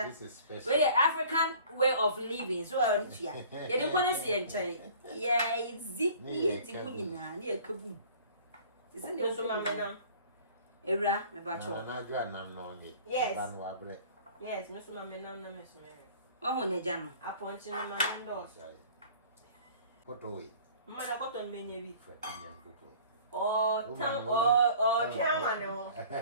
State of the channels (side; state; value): both; inverted; correlation -0.48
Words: is special. Well, the African way of living. So, yeah, you don't want to see it. Yeah, it's zippy. It's kaboom. Isn't it? So, Mama, Era, my bacho. Yes. Yes, Miss Mama, no, Miss Mary. Oh, Nejano. I point in my window. What away? Mother got on many or camera.